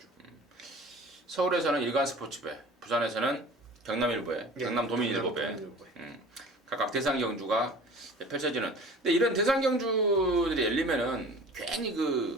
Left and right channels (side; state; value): both; normal; correlation 0.42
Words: 서울에서는 일간 스포츠배, 부산에서는 경남일보에, 네, 경남도민일보배, 경남도민일보에. 각각 대상 경주가 펼쳐지는. 근데 이런 대상 경주들이 열리면은 괜히